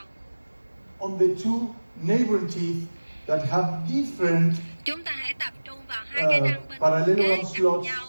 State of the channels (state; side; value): inverted; both; correlation -1.00